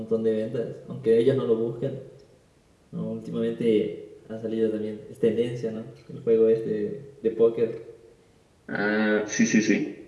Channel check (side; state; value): both; identical; correlation 1.00